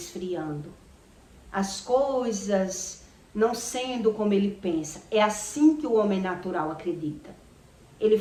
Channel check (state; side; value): identical; both; correlation 1.00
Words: As coisas não sendo como ele pensa. É assim que o homem natural acredita. Ele